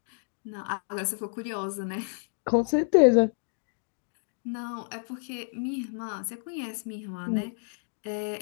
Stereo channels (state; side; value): silent; right; digital silence